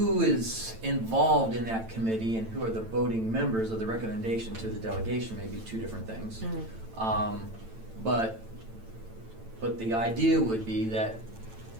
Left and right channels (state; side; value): late; left; 9.0 ms